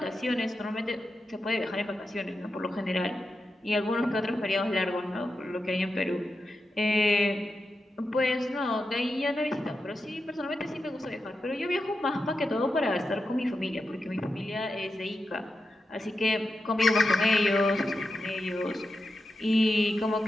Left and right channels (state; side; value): normal; both; correlation 0.89